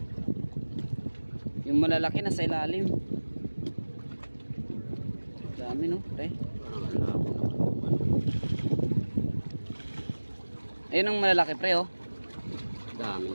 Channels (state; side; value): inverted; both; correlation -1.00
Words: Yung malalaki nasa ilalim. Dami no, pre. Ayun ang malalaki pre oh.